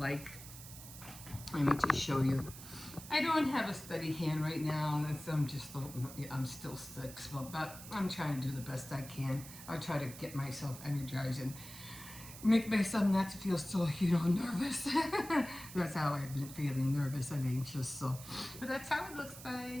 Let me just show you. I don't have a steady hand right now. I'm still sick, but I'm trying to do the best I can. I'll try to get myself energized and make myself not to feel so, nervous. That's how I've been feeling, nervous and anxious. So, but that's how it looks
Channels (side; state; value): right; noise; hiss, 14 dB below the sound